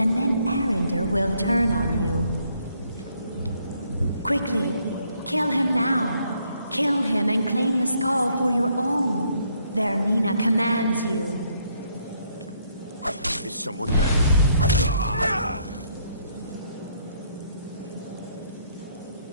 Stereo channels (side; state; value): both; inverted; correlation -0.70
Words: then Arender will turn on you. Quickly, kill him now. Kill him and claim the skull for your own. Vermina commands you. Is someone there?